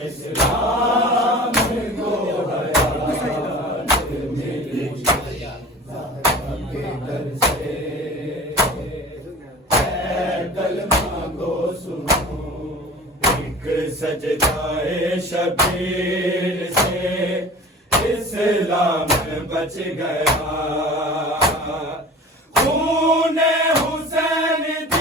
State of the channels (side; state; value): both; normal; correlation 0.39